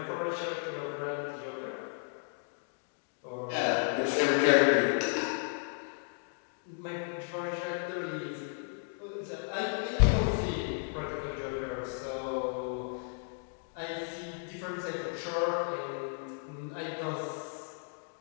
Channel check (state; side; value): silent; right; 55 dB below the other